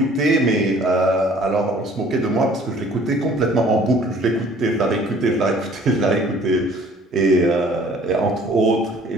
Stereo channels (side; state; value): both; normal; correlation 0.54